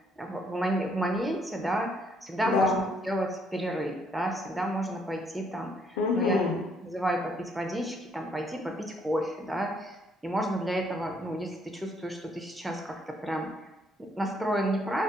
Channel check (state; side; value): normal; both; correlation 0.69